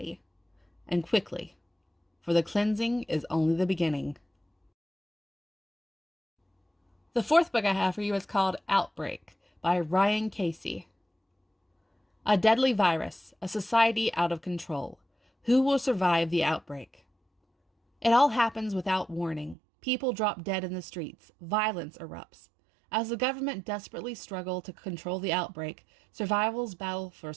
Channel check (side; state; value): left; drops out; at 19.6 s